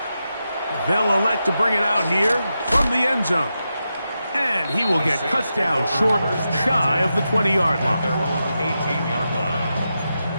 They'll elect to bring it out here from the end zone. And he will get cut down short, shy of the 20-yard line. Their own 18-yard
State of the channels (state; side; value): inverted; both; correlation -0.88